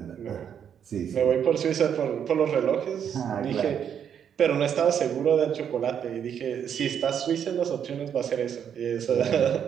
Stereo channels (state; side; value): quieter; left; 8.4 dB